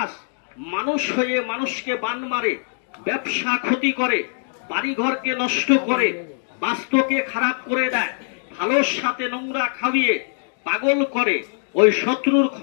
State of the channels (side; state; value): right; silent; digital silence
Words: মানুষ হয়ে মানুষকে বান মারে, ব্যবসা ক্ষতি করে, বাড়িঘরকে নষ্ট করে, বাস্তুকে খারাপ করে দেয়, ভালোর সাথে নোংরা খাইয়ে পাগল করে। ওই শত্রুর